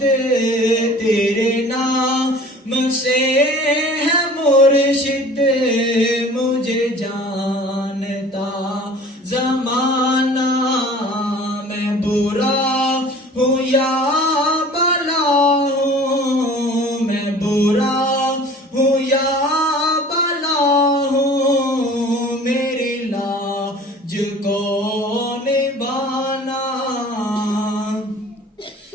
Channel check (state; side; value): normal; both; correlation 0.46